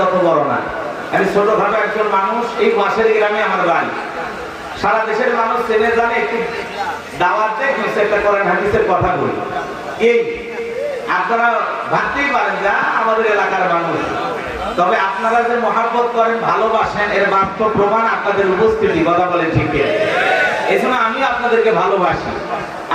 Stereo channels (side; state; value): both; identical; correlation 1.00